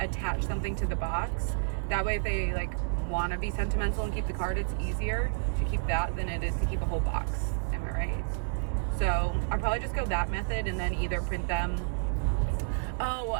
something to the box. That way if they like want to be sentimental and keep the card, it's easier to keep that than it is to keep a whole box. Am I right? So I'll probably just go that method and then either print them.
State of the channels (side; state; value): left; silent; digital silence